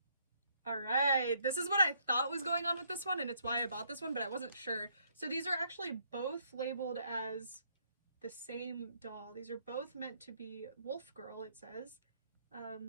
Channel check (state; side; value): inverted; both; correlation -0.69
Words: Alright, this is what I thought was going on with this one, and it's why I bought this one, but I wasn't sure. So these are actually both labeled as the same doll. These are both meant to be Wolf Girl, it says.